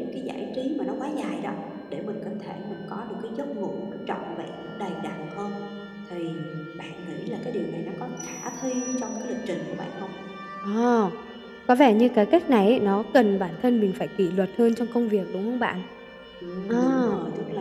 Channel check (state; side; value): identical; both; correlation 1.00